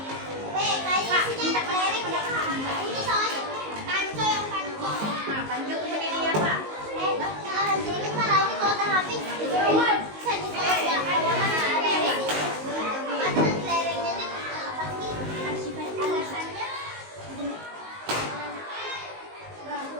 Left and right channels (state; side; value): late; left; 19 ms